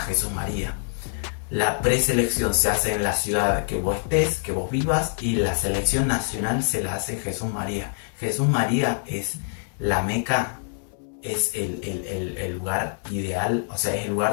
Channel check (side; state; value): right; silent; 62 dB below the other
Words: Jesús María. La preselección se hace en la ciudad que vos estés, que vos vivas, y la selección nacional se la hace en Jesús María. Jesús María es la meca, es el lugar ideal, o sea, es el